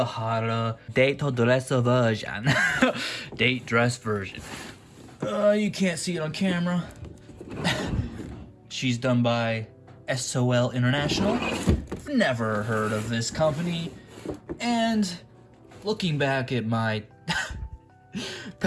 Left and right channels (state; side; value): identical; both; correlation 1.00